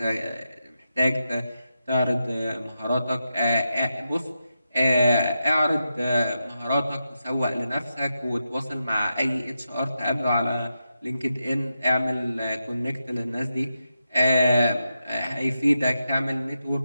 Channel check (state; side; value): inverted; both; correlation -0.87